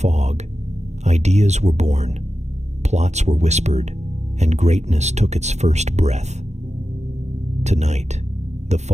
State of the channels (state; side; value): late; left; 0.33 ms